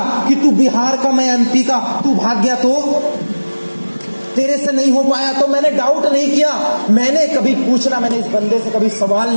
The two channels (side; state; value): both; inverted; correlation -1.00